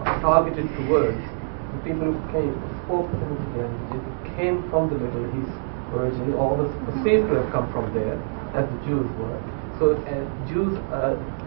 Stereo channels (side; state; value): left; silent; digital silence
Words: targeted towards the people who spoke Semitic languages, who came from the Middle East originally, or was perceived to have come from there, as the Jews were. So Jews